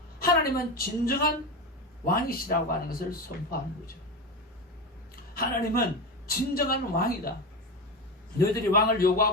하나님은 진정한 왕이시라고 하는 것을 선포하는 거죠. 하나님은 진정한 왕이다. 너희들이 왕을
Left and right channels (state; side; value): normal; both; correlation 0.20